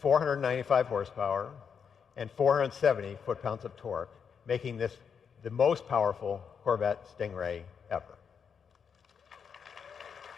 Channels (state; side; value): quieter; right; 6.7 dB